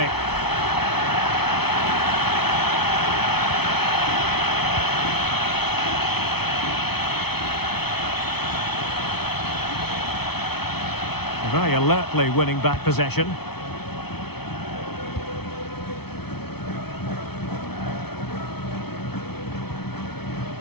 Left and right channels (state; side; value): late; right; 0.97 ms